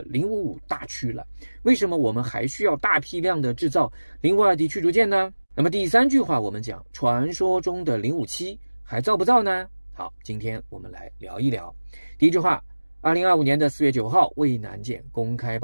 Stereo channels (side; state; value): both; inverted; correlation -1.00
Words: 055大驱了，为什么我们还需要大批量的制造052D 驱逐舰呢？那么第3句话我们讲传说中的057还造不造呢？好，今天我们来聊一聊。第一句话，2025年4月9号渭南舰公开